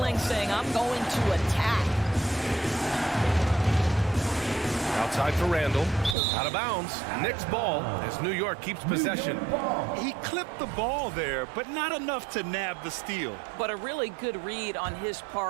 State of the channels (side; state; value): left; drops out; at 6.2 s